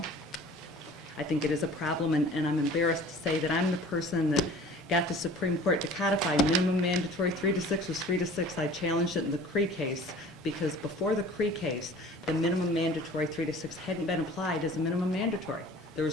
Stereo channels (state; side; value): normal; both; correlation 0.46